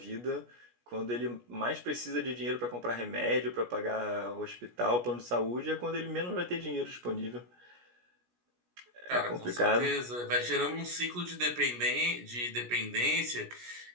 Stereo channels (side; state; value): left; late; 17 ms